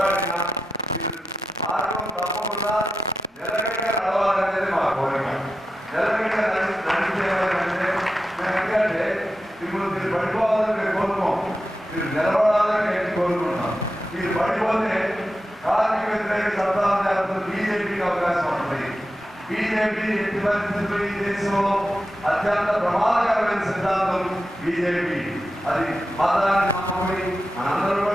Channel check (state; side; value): normal; both; correlation 0.90